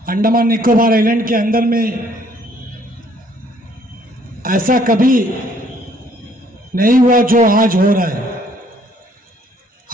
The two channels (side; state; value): both; normal; correlation 0.62